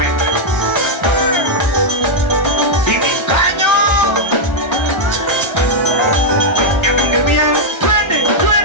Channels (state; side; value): late; right; 1.3 ms